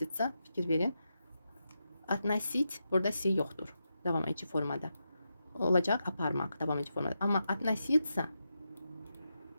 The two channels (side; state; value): both; inverted; correlation -0.87